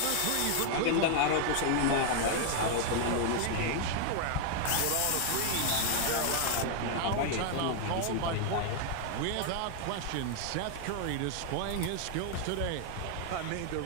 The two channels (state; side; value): different; both; correlation 0.00